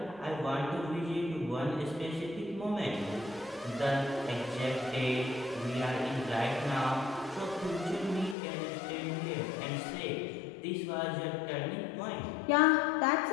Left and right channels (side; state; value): right; drops out; at 8.3 s